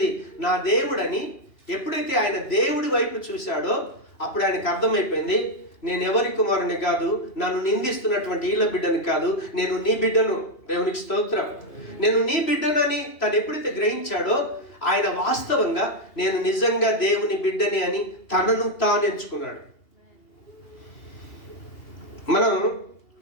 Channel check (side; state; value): right; late; 2.8 ms